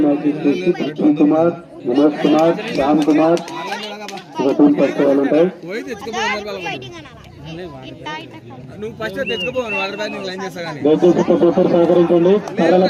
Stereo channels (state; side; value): identical; both; correlation 1.00